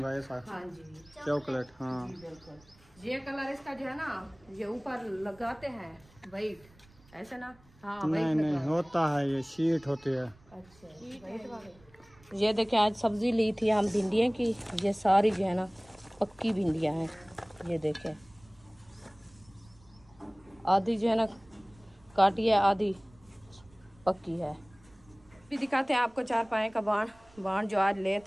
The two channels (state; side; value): noise; right; rumble, 28 dB below the sound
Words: ऐसा। हाँ जी, चॉकलेट। हाँ जी बिल्कुल। ये कलर इसका जो है ना ये ऊपर लगाते हैं वाइट, ऐसे ना। हाँ नहीं नहीं होता है, ये शीट होती है। ये देखिए आज सब्जी ली थी हम भिंडियों की, ये सारी जो है ना पक्की भिंडियाँ हैं। ये देखें, आधी जो है ना काटी है, आधी पक्की है। भी दिखाते हैं आपको चारपाई का बाण जो आज